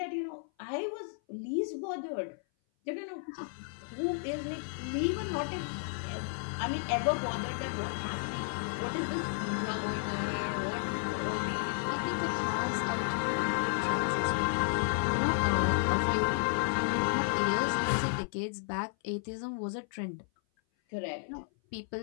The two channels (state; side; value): silent; right; 56 dB below the other